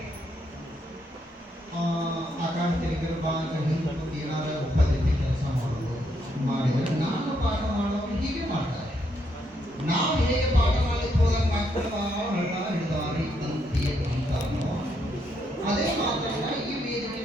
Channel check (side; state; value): both; normal; correlation 0.76